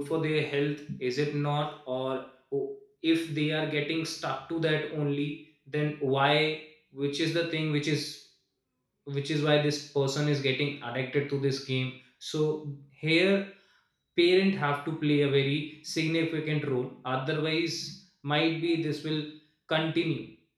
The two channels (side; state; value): both; identical; correlation 1.00